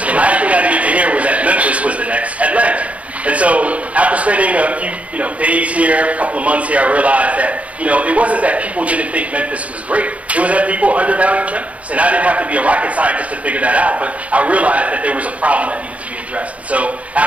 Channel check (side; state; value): left; late; 0.065 ms